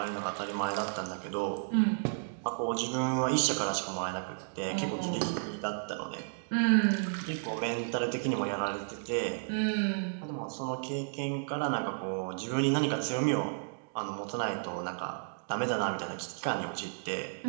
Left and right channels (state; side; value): silent; left; digital silence